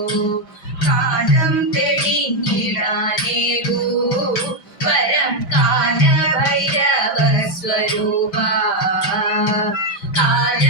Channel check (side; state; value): right; late; 5.1 ms